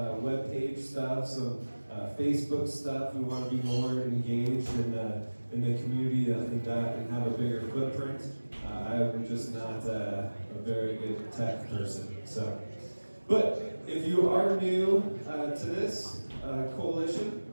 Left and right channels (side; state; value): both; inverted; correlation -1.00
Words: web page stuff, some Facebook stuff. We want to be more engaged in the community and have a bigger footprint. I'm just not a very good tech person. But if you are new to this coalition,